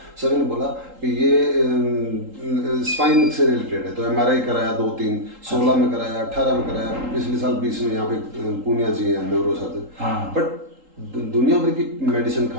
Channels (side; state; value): left; late; 3.8 ms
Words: सभी ने बोला कि ये स्पाइन से रिलेटेड है। तो एमआरआई कराया 2 3, 16 में कराया, 18 में कराया, पिछले साल 20 में यहाँ पे पूनिया जी हैं न्यूरो सर्जन। हाँ। बट दुनिया भर की मेडिसिन